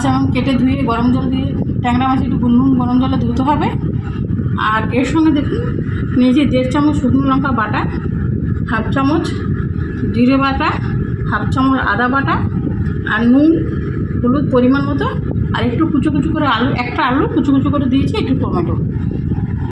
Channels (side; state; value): both; identical; correlation 1.00